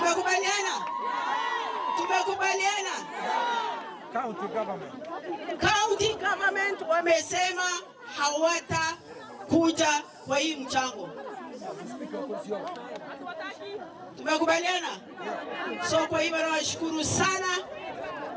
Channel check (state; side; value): identical; both; correlation 1.00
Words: Tumekubaliana? County government wamesema hawatakuja kwa hii mchango. Tumekubaliana? So kwa hivyo nawashukuru sana.